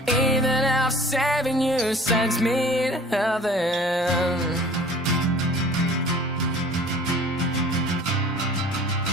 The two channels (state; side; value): normal; both; correlation 0.46